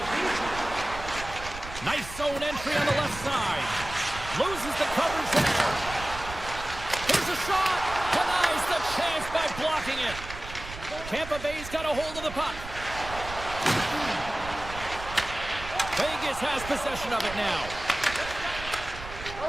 Nice zone entry on the left side. Loses the coverage there. Here's a shot. Denies the chance by blocking it. Tampa Bay's got a hold of the puck. Vegas has possession of it now.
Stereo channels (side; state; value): right; noise; rumble, 12 dB below the sound